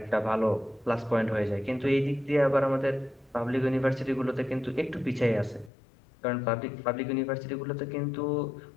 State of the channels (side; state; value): right; drops out; at 5.7 s